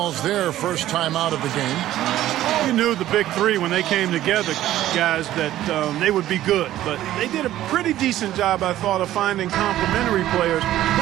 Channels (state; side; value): quieter; left; 13.6 dB